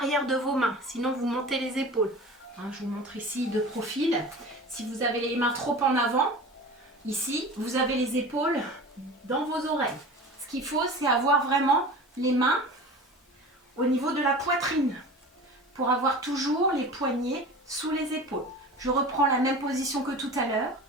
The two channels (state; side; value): normal; both; correlation 0.36